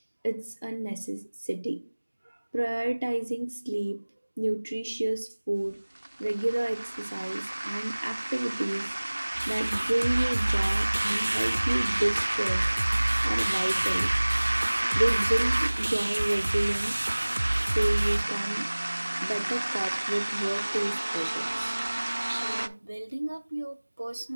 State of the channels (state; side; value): inverted; both; correlation -1.00